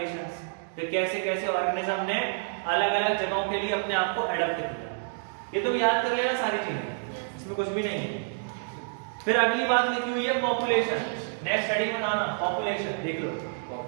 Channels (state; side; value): silent; left; digital silence